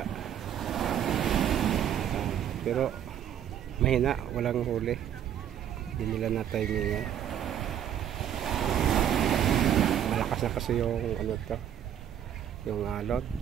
pero mahina, walang huli, hindi nila na-timingan. Malakas na kasi yung ano to, yung alon.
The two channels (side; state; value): left; quieter; 10.0 dB